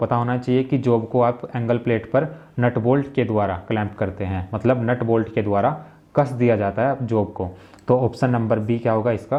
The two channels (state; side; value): identical; both; correlation 1.00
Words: होना चाहिए कि जॉब को आप एंगल प्लेट पर नट बोल्ट के द्वारा क्लैंप करते हैं, मतलब नट बोल्ट के द्वारा कस दिया जाता है जॉब को। तो ऑप्शन नंबर बी क्या होगा,